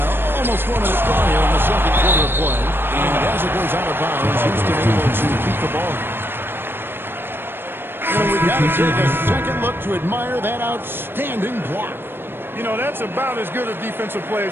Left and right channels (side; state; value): left; late; 0.10 ms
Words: almost 4 minutes gone here in the second quarter of play. And as it goes out of bounds, Houston able to keep the ball. And we've got to take a second look to admire that outstanding block. You know, that's about as good a defensive play